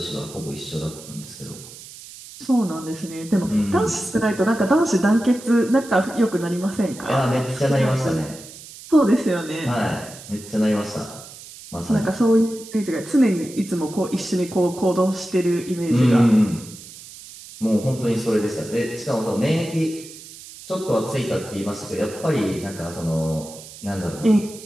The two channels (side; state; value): right; noise; hiss, 16 dB below the sound